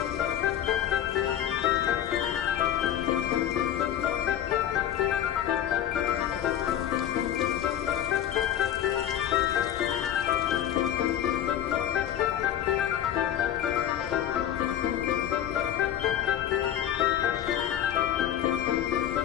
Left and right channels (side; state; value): right; quieter; 10.8 dB